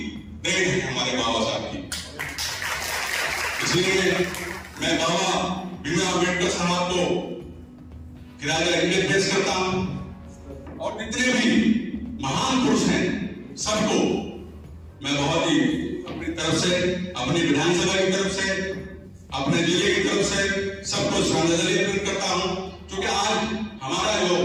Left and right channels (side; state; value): both; identical; correlation 1.00